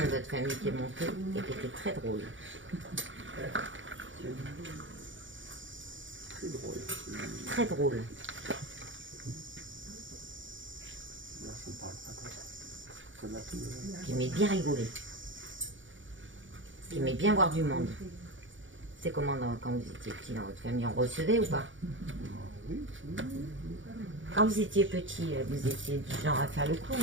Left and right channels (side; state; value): left; late; 0.56 ms